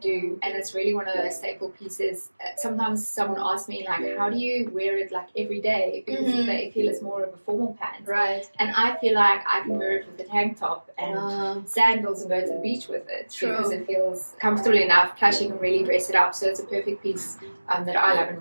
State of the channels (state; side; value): inverted; both; correlation -1.00